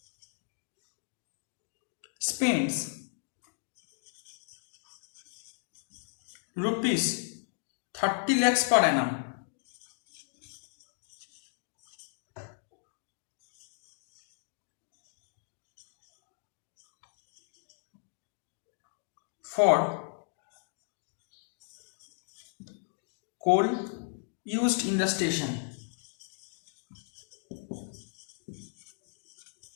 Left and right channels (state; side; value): silent; right; digital silence